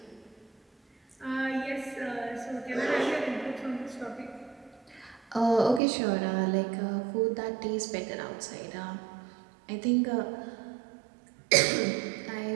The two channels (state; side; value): drops out; left; at 5.8 s